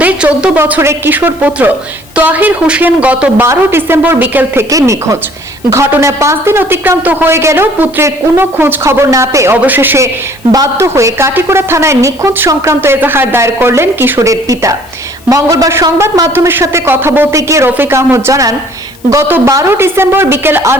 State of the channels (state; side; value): noise; left; hiss, 26 dB below the sound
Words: 14 বছরের কিশোর পুত্র তোয়াহির হোসেন গত 12 ডিসেম্বর বিকেল থেকে নিখোঁজ। ঘটনায় 5 দিন অতিক্রান্ত হয়ে গেলেও পুত্রের কোনো খোঁজ খবর না পেয়ে অবশেষে বাধ্য হয়ে কাটিগড়া থানায় নিখোঁজ সংক্রান্ত এজাহার দায়ের করলেন কিশোরের পিতা। মঙ্গলবার সংবাদ মাধ্যমের সাথে কথা বলতে গিয়ে রফিক আহমদ জানান, গত 12 ডিসেম্বর বিকেল